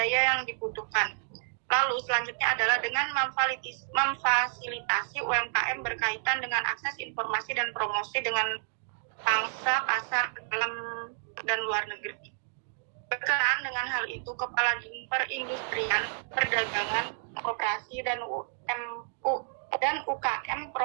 yang dibutuhkan. Lalu selanjutnya adalah dengan memfasilitasi UMKM berkaitan dengan akses informasi dan promosi dengan pangsa pasar dalam dan luar negeri. Berkenaan dengan hal itu, Kepala Perindustrian, Perdagangan, Koperasi dan UKM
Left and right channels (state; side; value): silent; left; digital silence